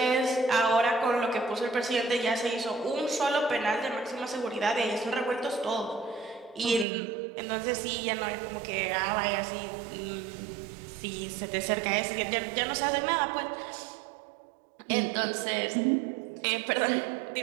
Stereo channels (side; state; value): left; drops out; at 6.9 s